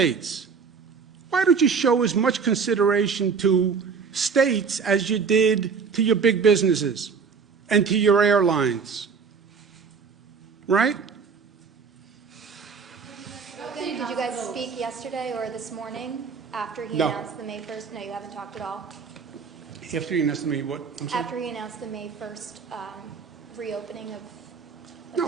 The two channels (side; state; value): left; quieter; 5.6 dB